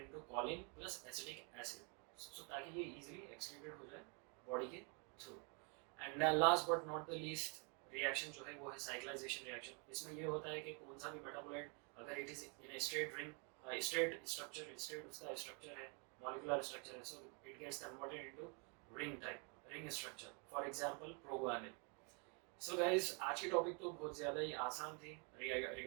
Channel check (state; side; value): quieter; left; 35.6 dB